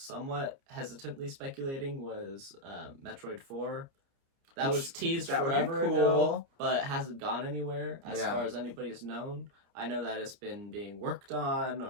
hesitantly speculating was Metroid 4. That was teased forever ago, but hasn't gone anywhere as far as anybody's known. I know that it's been being worked on,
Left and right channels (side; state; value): left; late; 30 ms